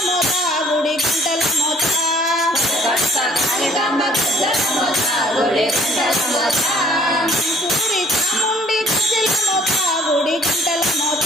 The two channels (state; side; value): normal; both; correlation 0.57